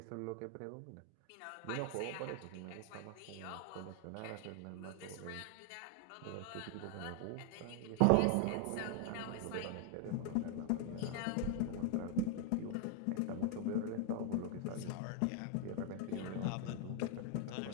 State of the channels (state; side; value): different; both; correlation 0.00